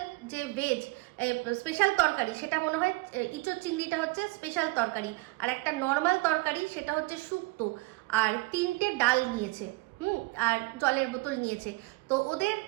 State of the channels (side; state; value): left; quieter; 23.7 dB